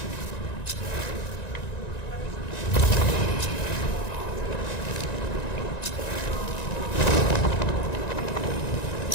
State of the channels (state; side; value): late; right; 1.9 ms